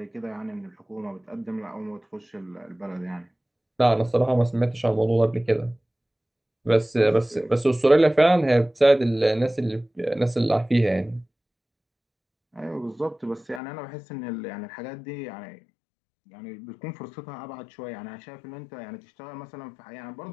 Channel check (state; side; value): drops out; right; at 13.6 s